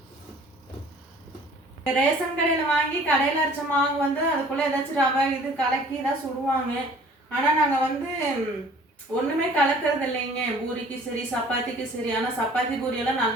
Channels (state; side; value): normal; both; correlation 0.51